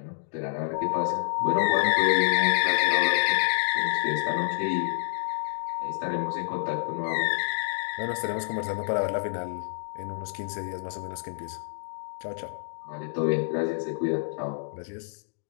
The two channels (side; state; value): right; silent; digital silence